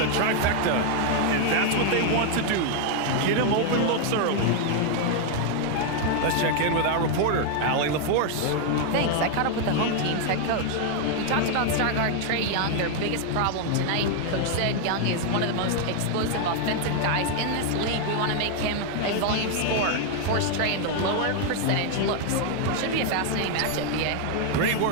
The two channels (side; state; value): both; different; correlation 0.00